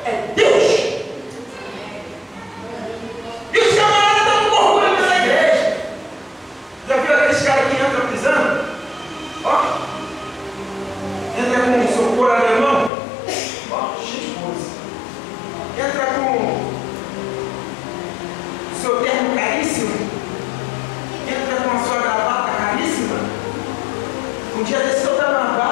é Deus. E os camaradas estão com orgulho dessa igreja. Já viu aqueles caras que entram pisando? Ó, entra com um socorro alemão, ó, cheio de coisa. Entra com seu terno caríssimo, entra com a sua gravata caríssima. Um dia desse eu estava na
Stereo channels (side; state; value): right; drops out; at 12.9 s